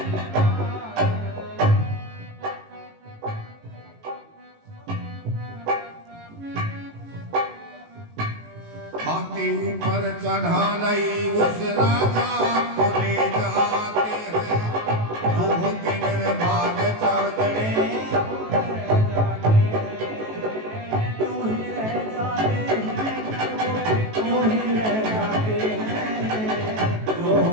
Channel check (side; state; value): left; late; 18 ms